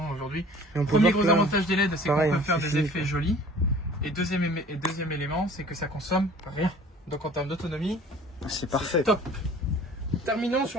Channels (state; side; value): normal; both; correlation 0.48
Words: aujourd'hui. Premier gros avantage des LED, c'est qu'on peut faire des effets jolis. Et deuxième élément, c'est que ça consomme rien. Donc en termes d'autonomie, c'est parfait. Top. Terminons